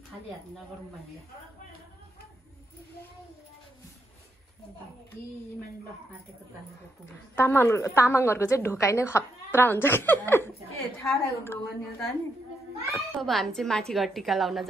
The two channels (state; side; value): normal; both; correlation 0.79